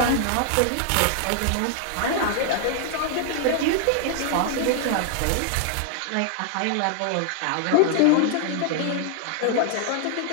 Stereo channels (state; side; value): different; both; correlation 0.00